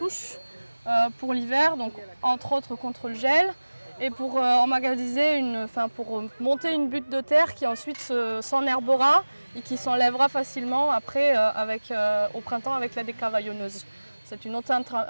pour l'hiver, donc entre autres contre le gel, et pour pour monter une butte de terre qui ensuite s'enherbera et qui s'enlèvera facilement après au printemps avec la décavaillonneuse. C'est une autre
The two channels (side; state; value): both; inverted; correlation -1.00